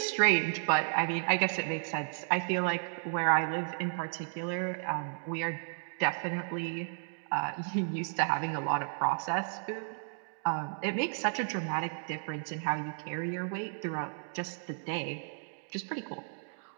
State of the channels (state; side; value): silent; left; digital silence